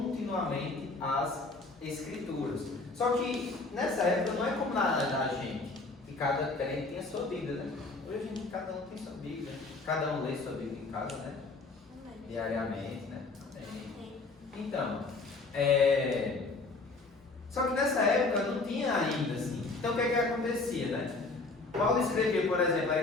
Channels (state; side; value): quieter; right; 3.6 dB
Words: as Escrituras. Só que nessa época não é como na gente, que cada crente tinha sua Bíblia, né? Hoje cada um tem sua Bíblia, cada um lê sua Bíblia em casa, né? Diariamente, né? Então, só que nessa época não tinha ainda assim. Então o que é que acontecia, né? Paulo escreveu, por exemplo, a